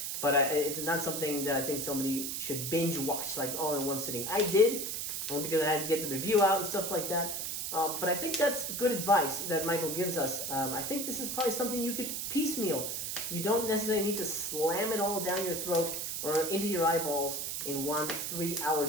but it's not something that I think somebody should binge watch, like all in one sitting. I did, because I had to get the review out and stuff like that. But I think that's good advice that Michael gives us. I think this is probably something you could piecemeal. You don't necessarily need to slam it all down your throat or into your eyeballs in one 3-hour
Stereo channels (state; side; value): noise; right; hiss, 3 dB below the sound